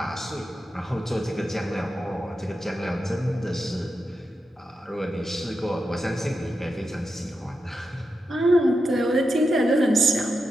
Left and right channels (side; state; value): both; normal; correlation 0.88